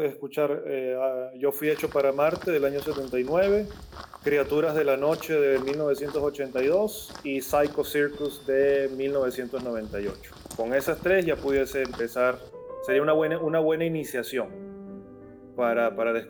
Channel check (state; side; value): identical; both; correlation 1.00